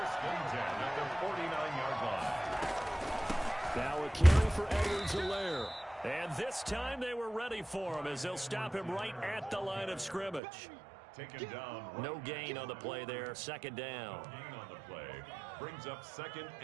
and 10 at the 49-yard line. Now a carry for Edwards-Helaire. And this time they were ready for him as they'll stop him right at the line of scrimmage. Taken down. No gain on the play there. 2nd down. Gain on the play. Brings up 2nd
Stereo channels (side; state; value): left; drops out; at 10.4 s